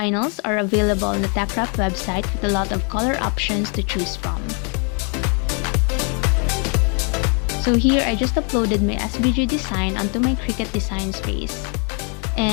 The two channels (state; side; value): quieter; right; 38.5 dB